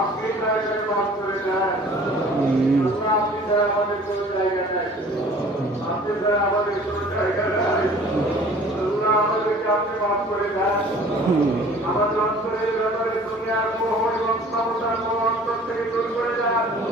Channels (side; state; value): both; normal; correlation 0.49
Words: জায়গায় মাফ করে দেন। আল্লাহ, আপনি ছাড়া আমাদের কোনো জায়গা নাই, আপনি ছাড়া আমাদের কোনো জায়গা নাই। আল্লাহ, আমাদেরকে আপনি মাফ করে দেন। আমাদের অন্তরের ব্যাপারে দুনিয়ার মোহ এবং ক্ষমতার মোহ অন্তর থেকে দূর করে দেন।